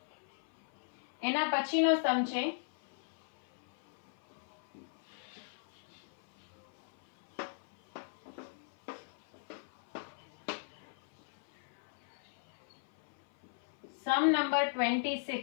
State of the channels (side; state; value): right; silent; 53 dB below the other